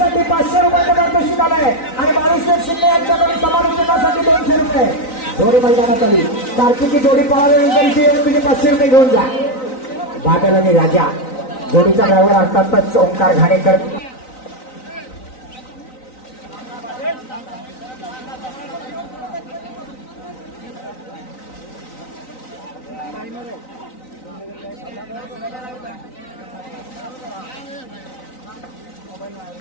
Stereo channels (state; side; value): late; right; 3.9 ms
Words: 500 रुपयाचं पारितोषिक आलंय आणि बाळूशेठ शिंदे यांच्याकडून समालोचनासाठी 200 रुपये. जोडी मैदानात आली. कार्तिकी जोडी पळाल्यानंतर इथे येऊन तुम्ही 500 रुपये घेऊन जा. बादल आणि राजा जोडीचा ड्रायव्हर अर्थातच ओंकार घाणेकर.